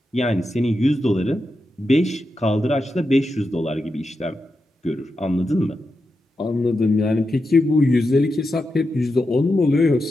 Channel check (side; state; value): both; normal; correlation 0.88